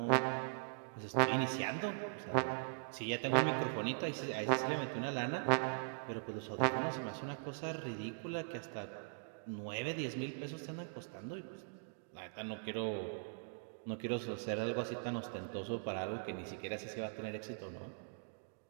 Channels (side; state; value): left; silent; digital silence